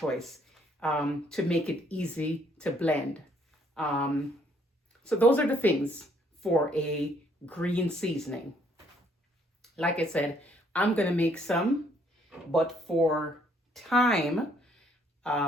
to make it easy to blend. So those are the things for a green seasoning. Like I said, I'm going to make some, but for time,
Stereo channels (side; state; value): both; normal; correlation 0.66